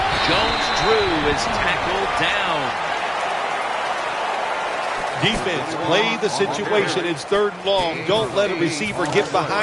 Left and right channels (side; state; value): both; identical; correlation 1.00